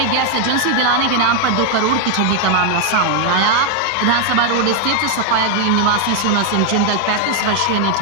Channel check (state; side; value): different; both; correlation 0.00